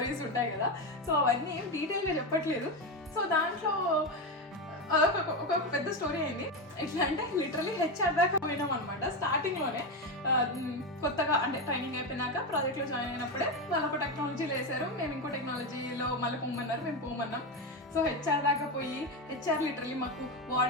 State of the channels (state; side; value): normal; both; correlation 0.13